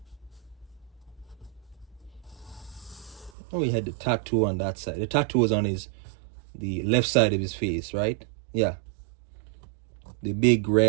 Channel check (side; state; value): left; drops out; at 3.3 s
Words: Oh, he had the tattoo on that side. The tattoo was on the left side of his face, right? Yeah. The big